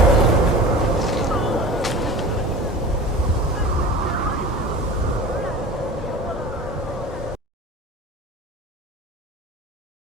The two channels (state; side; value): normal; both; correlation 0.37